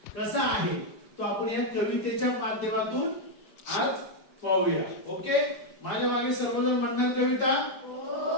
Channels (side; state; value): right; late; 4.9 ms